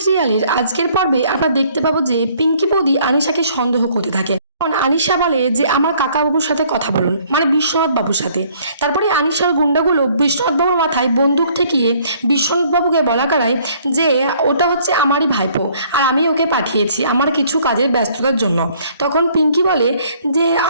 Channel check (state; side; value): inverted; both; correlation -0.60